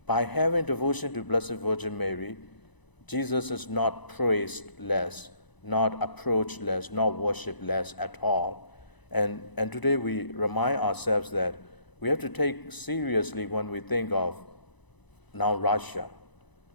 By having devotion to Blessed Virgin Mary, Jesus is not praised less, not approached less, not worshipped less at all. And today we remind ourselves that we have to take seriously when we think of now Russia.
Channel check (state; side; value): late; right; 1.0 ms